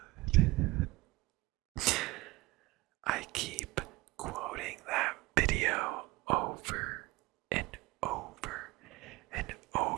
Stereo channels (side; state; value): left; quieter; 21.6 dB